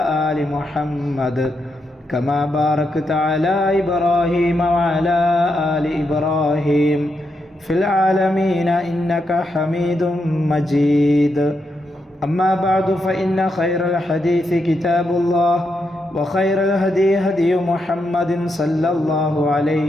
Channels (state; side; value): normal; both; correlation 0.83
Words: آل محمد كما باركت على إبراهيم وعلى آل إبراهيم في العالمين إنك حميد مجيد أما بعد فإن خير الحديث كتاب الله وخير الهدي هدي محمد صلى الله